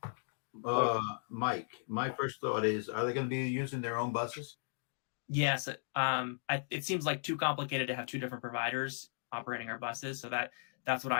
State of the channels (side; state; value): right; silent; digital silence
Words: Mike, my first thought is, are they going to be using their own buses? Yes. It seems like too complicated to have two different providers operating our buses. So that's what